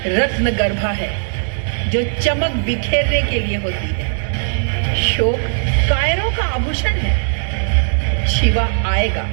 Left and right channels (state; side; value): silent; left; digital silence